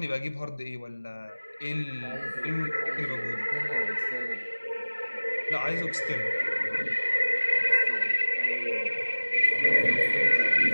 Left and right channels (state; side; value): inverted; both; correlation -1.00